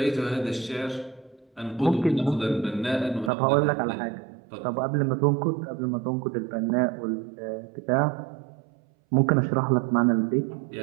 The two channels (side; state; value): left; drops out; at 3.3 s